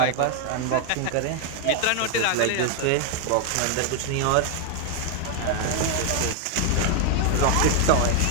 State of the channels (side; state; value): both; different; correlation 0.00